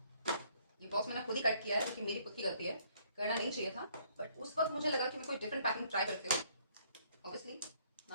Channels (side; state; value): both; inverted; correlation -0.64